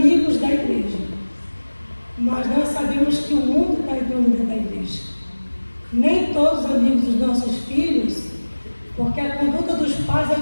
da igreja. Mas nós sabemos que o mundo está entrando dentro da igreja. Nem todos os amigos dos nossos filhos, porque a conduta dos pais é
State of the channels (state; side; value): inverted; both; correlation -1.00